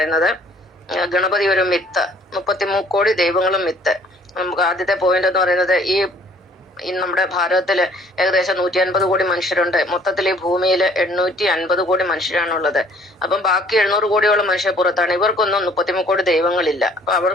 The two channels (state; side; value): normal; both; correlation 0.58